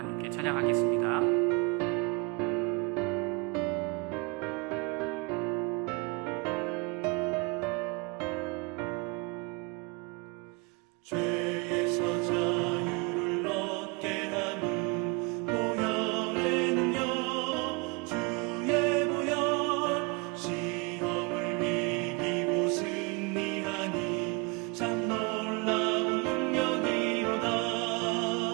찬양하겠습니다. 죄에서 자유를 얻게 함은 보혈에는요 주의 보혈 시험을 이기고 승리하니 참 놀라운 능력이로다.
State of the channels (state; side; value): quieter; left; 29.0 dB